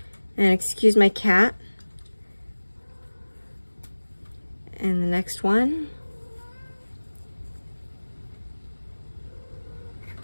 And excuse my cat. And the next one.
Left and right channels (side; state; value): both; inverted; correlation -1.00